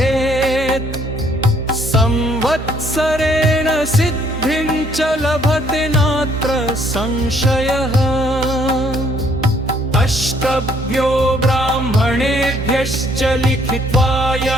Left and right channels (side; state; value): both; normal; correlation 0.65